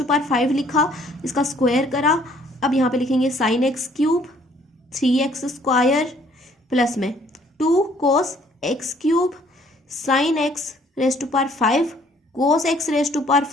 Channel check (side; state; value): both; normal; correlation 0.61